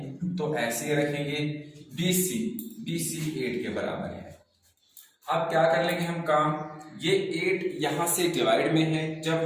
तो ऐसे ही रखेंगे, बी सी 8 के बराबर है। अब क्या कर लेंगे हम काम, ये 8 यहां से डिवाइड में है, जब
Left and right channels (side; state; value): both; identical; correlation 1.00